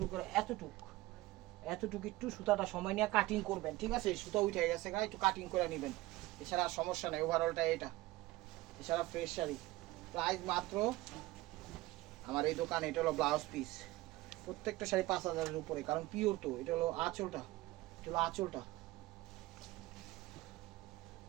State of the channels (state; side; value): quieter; left; 18.8 dB